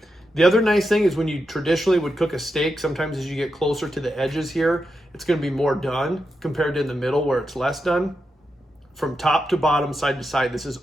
The other nice thing is when you traditionally would cook a steak, sometimes as you get closer to the edges here, it's going to be more done compared to in the middle where it's less done. From top to bottom, side to side, this is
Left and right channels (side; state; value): both; normal; correlation 0.87